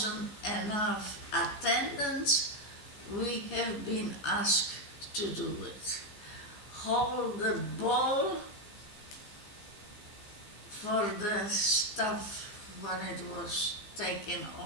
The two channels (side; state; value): right; late; 14 ms